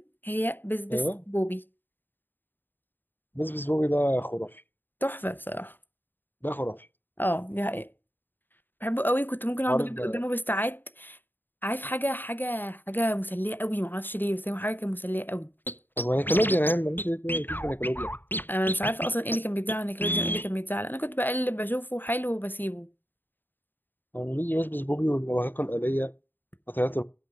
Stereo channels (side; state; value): right; late; 0.093 ms